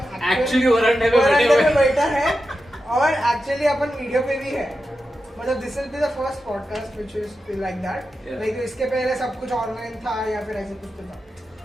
एक्चुअली वरांडे में बैठा है और एक्चुअली अपन वीडियो पे भी है। मतलब this will be the first podcast which is like that. Like इसके पहले सब कुछ ऑनलाइन था या फिर ऐसे कुछ तो था,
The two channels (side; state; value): both; normal; correlation 0.90